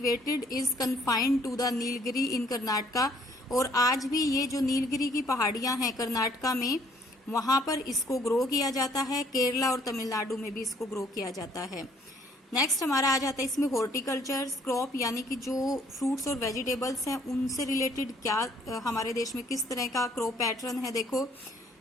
is confined to the Nilgiri in Karnataka, और आज भी ये जो नीलगिरी की पहाड़ियां हैं कर्नाटका में, वहां पर इसको ग्रो किया जाता है। केरला और तमिलनाडु में भी इसको ग्रो किया जाता है। नेक्स्ट हमारा आ जाता है इसमें हॉर्टिकल्चर क्रॉप, यानी कि जो फ्रूट्स और वेजिटेबल्स हैं उनसे रिलेटेड क्या हमारे देश में किस तरह का क्रॉप पैटर्न है। देखो,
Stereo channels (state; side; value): normal; both; correlation 0.62